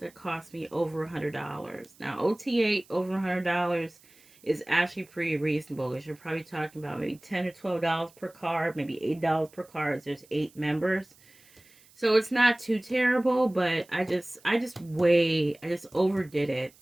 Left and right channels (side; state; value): right; noise; hiss, 28 dB below the sound